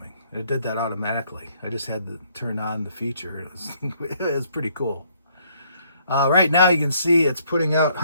It did that automatically. I just had to turn on the feature. It was pretty cool. Right now you can see it's putting out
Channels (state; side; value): inverted; both; correlation -0.66